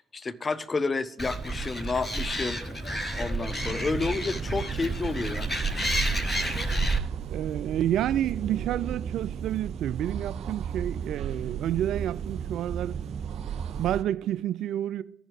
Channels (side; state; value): left; quieter; 3.5 dB